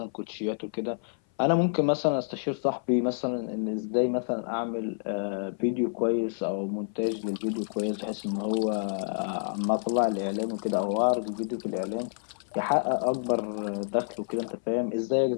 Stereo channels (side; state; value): right; silent; 56 dB below the other